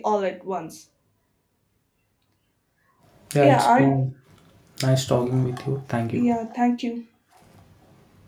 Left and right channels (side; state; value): both; identical; correlation 1.00